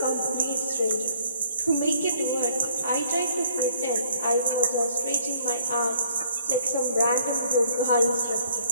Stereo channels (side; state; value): both; inverted; correlation -0.62